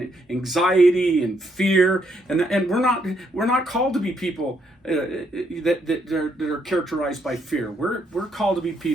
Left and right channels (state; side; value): normal; both; correlation 0.74